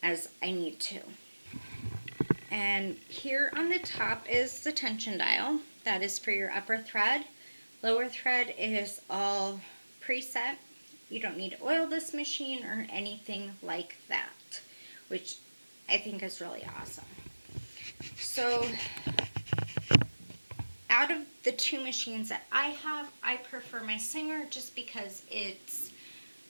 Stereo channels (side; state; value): both; inverted; correlation -1.00